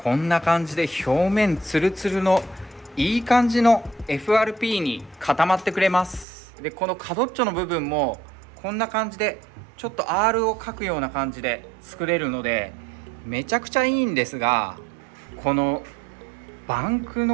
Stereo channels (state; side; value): drops out; left; at 6.2 s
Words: こんな感じで表面ツルツルのいい感じの FRP に固まってくれます。でこの角っちょの部分もこんな感じでちょっと R を描くような感じで作れるのでめちゃくちゃいいんですが、このバンク